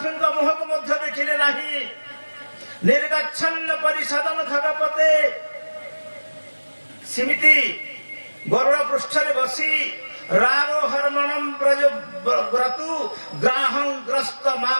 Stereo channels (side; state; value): both; inverted; correlation -1.00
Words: ମୁହଁକୁ ମଧ୍ୟ ଦେଖିଲେ ନାହିଁ। ନିର୍ଗଚ୍ଛନ୍ନ ପରିଷଦନ ଖଗପତେ ସେମିତି ଗରୁଡ଼ ପୃଷ୍ଠରେ ବସି ରାରୋ ହରମଣಂ ବ୍ରଜ ବ୍ରତୁ ଗ୍ରାହଂ ଗ୍ରସ୍ତ